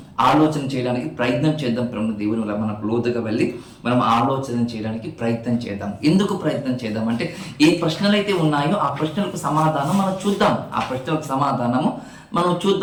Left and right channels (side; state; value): both; identical; correlation 1.00